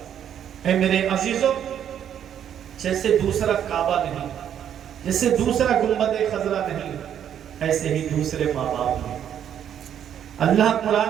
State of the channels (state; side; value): quieter; left; 9.5 dB